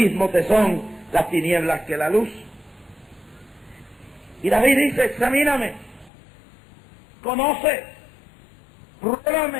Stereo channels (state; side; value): drops out; right; at 6.1 s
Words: te son las tinieblas que la luz. Y David dice, examíname, conoce,